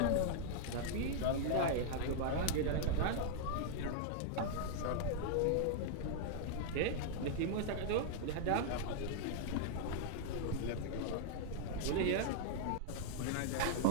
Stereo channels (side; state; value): both; different; correlation -0.01